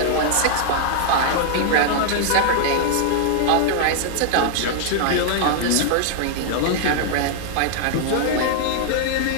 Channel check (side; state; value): both; different; correlation -0.01